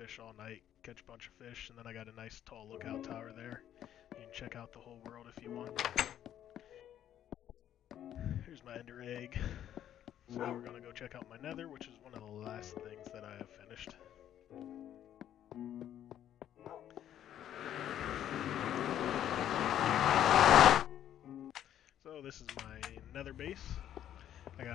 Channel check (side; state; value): right; quieter; 10.9 dB